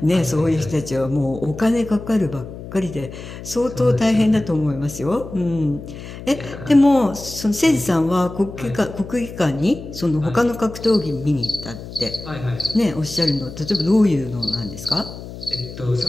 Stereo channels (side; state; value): left; noise; hum, 12 dB below the sound